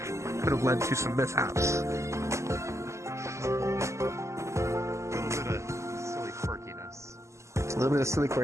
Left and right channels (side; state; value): left; late; 0.14 ms